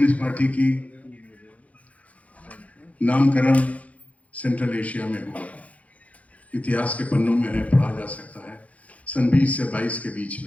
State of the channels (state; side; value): late; right; 0.067 ms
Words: पार्टी की नामकरण सेंट्रल एशिया में हुआ। इतिहास के पन्नों में है, पढ़ा जा सकता है। सन 20 से 22 के बीच